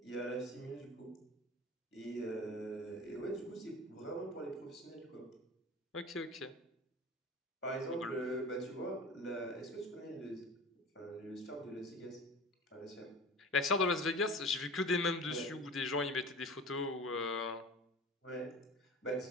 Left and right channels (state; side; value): normal; both; correlation 0.37